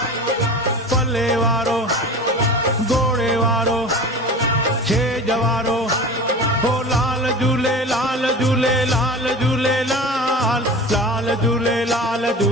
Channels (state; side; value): normal; both; correlation 0.35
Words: पल्ले वारो घोड़े वारो छेज वारो हो लाल झूले लाल झूले लाल झूले लाल लाल झूले लाल